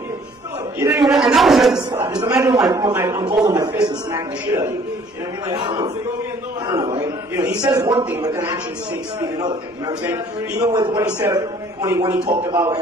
You didn't even react. And that was just a slot. Just imagine I'm holding my fist and smacking the shit out of you. You know what I mean? Like, I don't know. Right? You know, he says one thing, but then actions speak another thing. You know what I'm saying? Even with what he said when he talked about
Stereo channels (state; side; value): normal; both; correlation 0.56